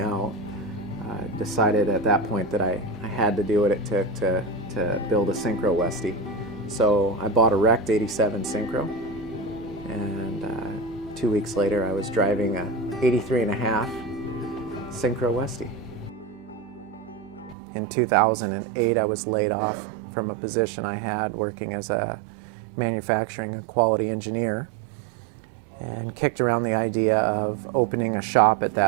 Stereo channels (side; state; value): left; drops out; at 17.6 s